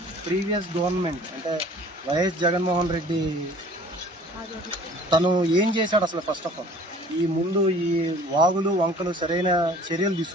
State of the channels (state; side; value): normal; both; correlation 0.50